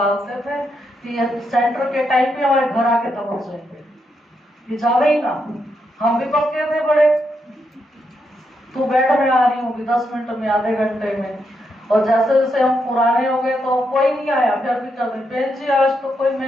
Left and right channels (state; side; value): normal; both; correlation 0.81